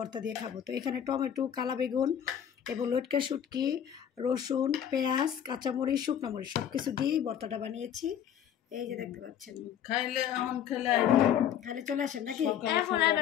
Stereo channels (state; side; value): quieter; right; 9.4 dB